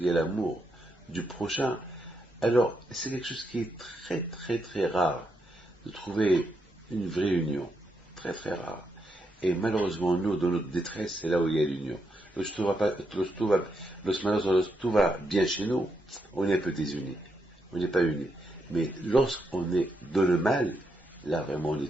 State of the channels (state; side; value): normal; both; correlation 0.81